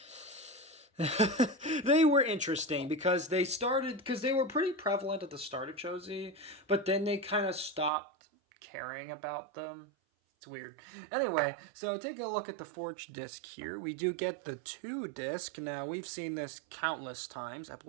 they were interesting because they were pretty prevalent at the start of Cho-Z, but then they kind of stopped caring about them. It's weird. Anyway, so taking a look at the forged disc here, we do get the 2 disc. Now, we've seen this countless times. I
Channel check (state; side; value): drops out; left; at 7.9 s